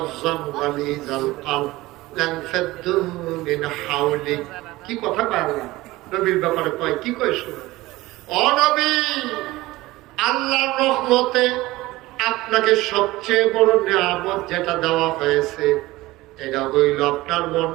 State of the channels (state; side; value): quieter; left; 18.8 dB